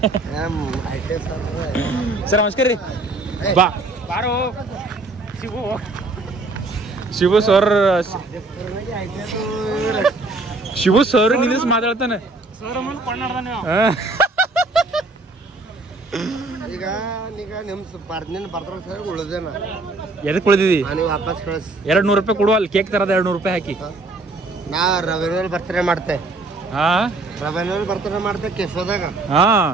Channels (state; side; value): quieter; left; 3.2 dB